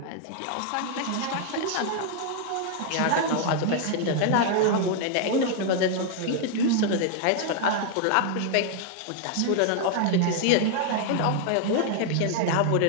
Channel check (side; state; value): both; different; correlation 0.00